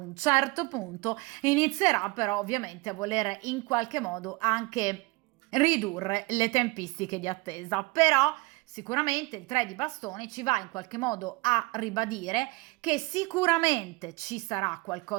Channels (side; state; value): left; quieter; 24.2 dB